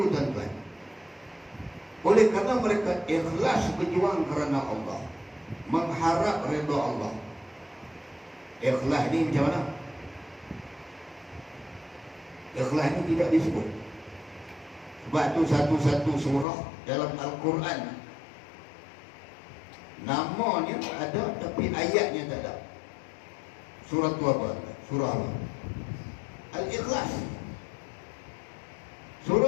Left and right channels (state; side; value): drops out; right; at 16.4 s